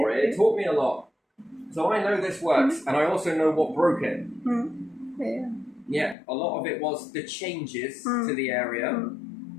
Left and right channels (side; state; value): right; drops out; at 6.2 s